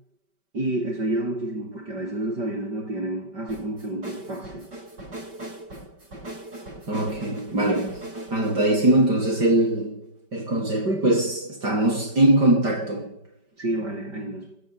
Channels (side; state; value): left; late; 5.2 ms